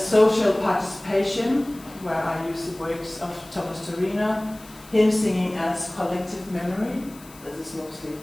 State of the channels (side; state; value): left; noise; hiss, 22 dB below the sound